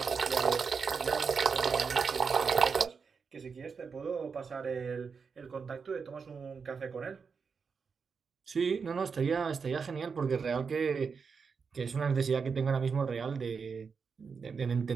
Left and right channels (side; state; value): left; quieter; 5.6 dB